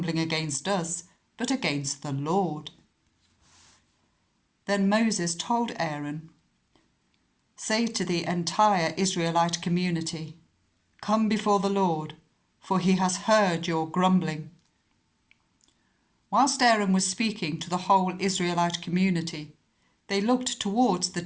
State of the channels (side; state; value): both; identical; correlation 1.00